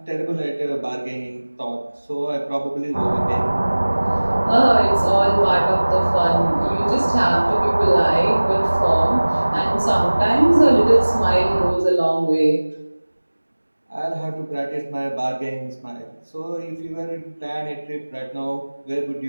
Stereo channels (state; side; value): inverted; both; correlation -1.00